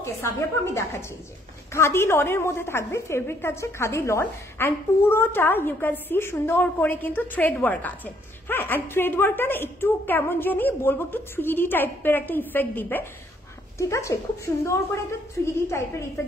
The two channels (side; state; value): both; normal; correlation 0.67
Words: Sabi আপু, আমি দেখাচ্ছি। যে খাদি লনের মধ্যে থাকবে, ফেব্রিক থাকছে খাদি লন। অ্যান্ড পুরোটা ইউ ক্যান সি সুন্দর করে কিন্তু থ্রেড ওয়ার্ক আছে। হ্যাঁ, অ্যান্ড থ্রেড ওয়ার্কটা না একটু কেমন জানি বলবো, একটু 3D টাইপের একটা ইফেক্ট দিবে। ঠিক আছে, খুব সুন্দর করে একটা 3D টাইপের